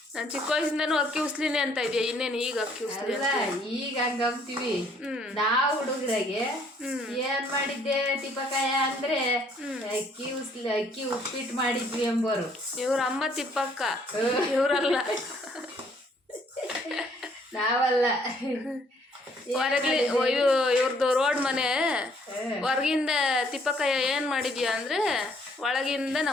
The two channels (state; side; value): normal; both; correlation 0.64